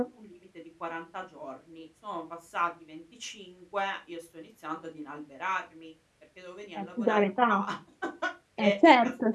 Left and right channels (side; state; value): both; identical; correlation 1.00